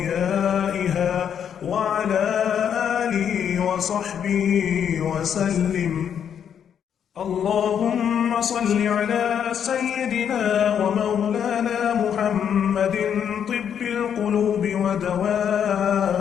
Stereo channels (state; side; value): quieter; right; 8.4 dB